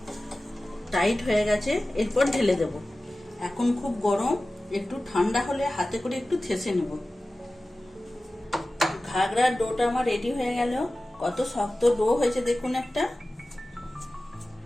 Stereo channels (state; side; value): normal; both; correlation 0.96